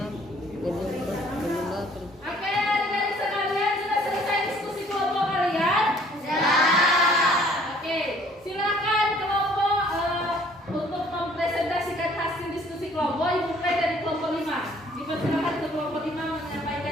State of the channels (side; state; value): both; normal; correlation 0.58